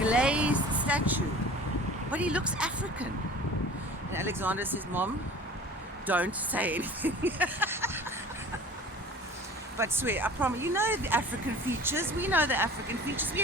statue, but he looks African. And Alexander says, Mom, don't say anything. But swear, I promise, you know the African features, we know the African features, we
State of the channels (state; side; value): normal; both; correlation 0.43